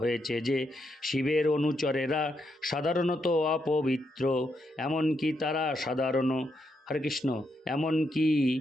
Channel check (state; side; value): normal; both; correlation 0.80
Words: যে শিবের অনুচরেরা সাধারণত অপবিত্র, এমনকি